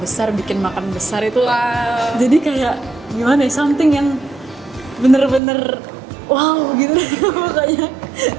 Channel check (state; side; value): drops out; left; at 5.4 s